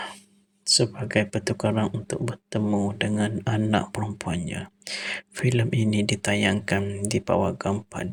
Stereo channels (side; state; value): both; identical; correlation 1.00